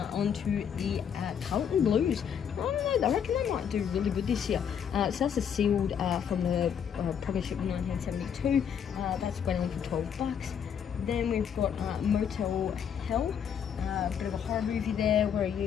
on to the Carlton Blues. I don't know, I reckon they might do really good this year. So that's a sealed from the Premiership in 1972. That's went on for $12. Then we've got Motel Hell. Bit of a horror movie there. Where are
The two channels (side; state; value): right; quieter; 8.0 dB